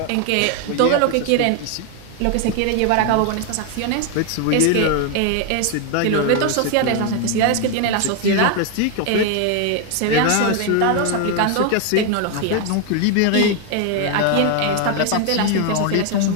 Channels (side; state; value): both; different; correlation 0.01